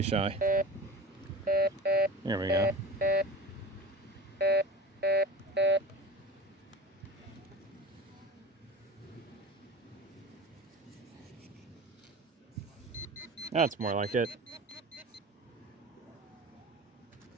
shy. Here we go. That's more like it.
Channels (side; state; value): both; normal; correlation 0.34